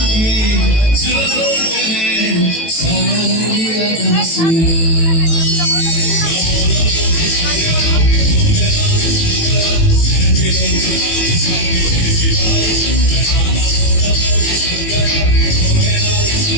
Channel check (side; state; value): right; late; 18 ms